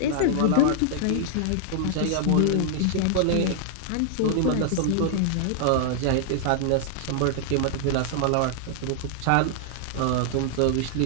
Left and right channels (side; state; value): both; different; correlation -0.01